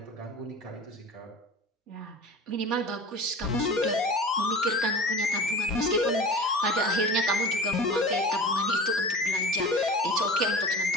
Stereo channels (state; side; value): normal; both; correlation 0.36